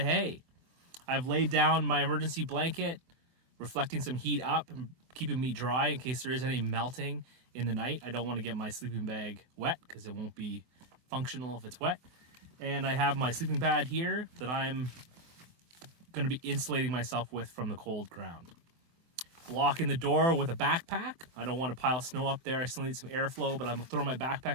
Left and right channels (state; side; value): late; left; 24 ms